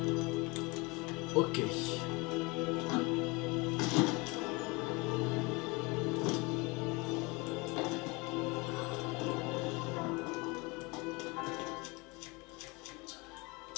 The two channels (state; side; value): quieter; right; 26.3 dB